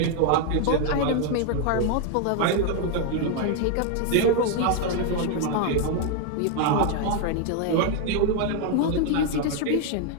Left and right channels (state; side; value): different; both; correlation 0.00